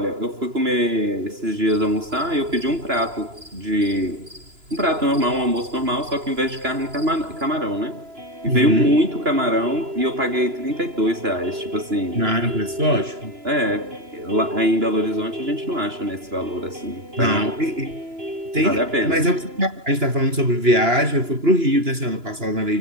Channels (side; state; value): left; late; 2.9 ms